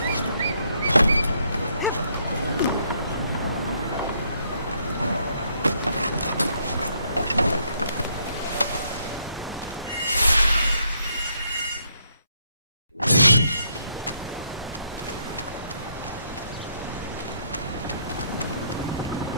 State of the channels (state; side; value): inverted; both; correlation -0.71